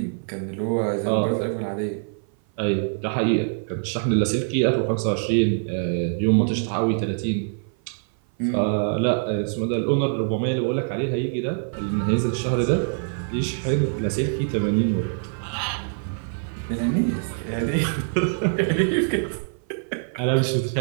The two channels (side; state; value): left; silent; 56 dB below the other